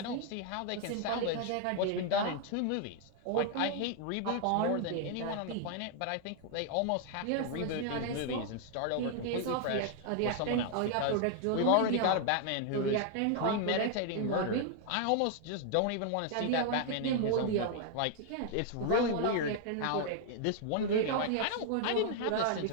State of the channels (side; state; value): both; different; correlation 0.00